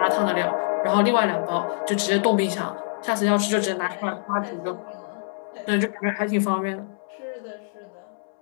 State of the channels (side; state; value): right; silent; 62 dB below the other